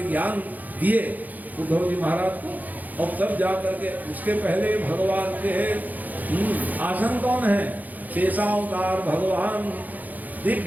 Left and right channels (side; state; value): left; late; 0.082 ms